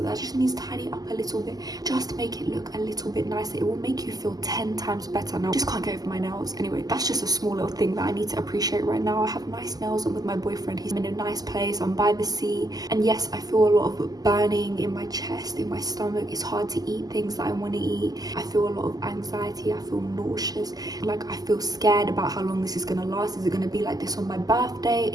That just needs tidy up a little bit. Just make it look a little bit nicer. It will make you feel 10 times better. Now, I just can't get over my nails. Anyway, that's just a small little thing that I need to appreciate right now. I have nice nails. I'm with my boyfriend. He's in a nice place. I'm by the sea. And yes, I feel a lot of burning in my chest, in my stomach. It's hard to eat things that I want to eat. I feel a lot of anxiety. I feel nauseous. Like, I feel scared about how long this is going to last. Is it going to be like this on my birthday?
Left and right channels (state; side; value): late; left; 0.18 ms